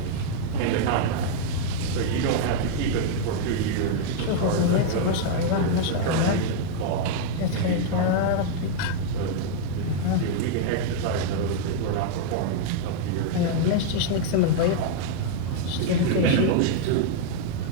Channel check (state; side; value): different; both; correlation -0.01